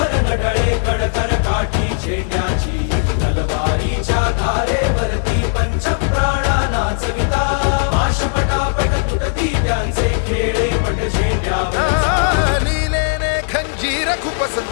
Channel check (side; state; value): right; silent; digital silence